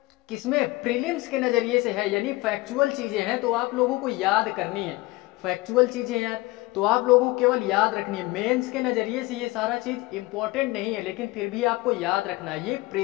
किसमें? प्रीलिम्स के नजरिए से है, यानी फैक्चुअल चीजें हैं, तो आप लोगों को याद करनी है। फैक्चुअल चीजें यार तो आप लोगों को केवल याद रखनी है। मेंस के नजरिए से ये सारा चीज इंपॉर्टेंट नहीं है, लेकिन फिर भी आपको याद रखना है। ये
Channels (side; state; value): right; quieter; 20.9 dB